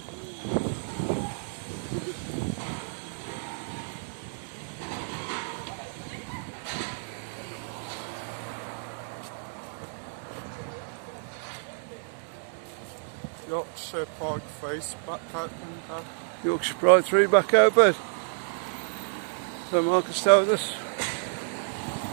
Yorkshire Pride face back open. Yorkshire Pride 3 back open. So Marcus told us.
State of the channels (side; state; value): left; silent; 58 dB below the other